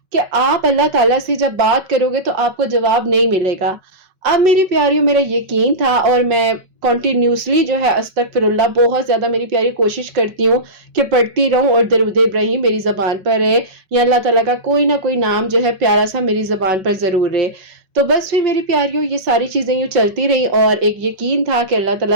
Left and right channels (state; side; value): late; left; 5.3 ms